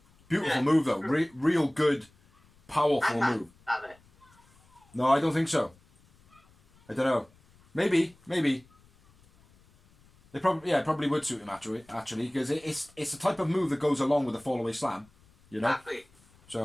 Beautiful move though. Real good, powerful move. No, I don't think so. I don't know. Maybe. They probably would suit him actually, because it's the type of move that goes along with a fallaway slam, you know. Exactly.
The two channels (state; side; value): noise; left; rumble, 30 dB below the sound